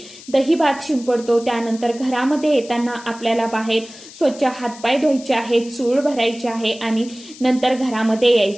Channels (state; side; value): noise; left; hiss, 18 dB below the sound